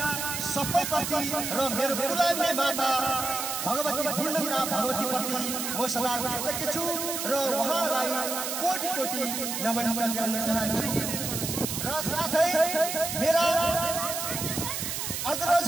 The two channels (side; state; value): right; noise; hiss, 3 dB below the sound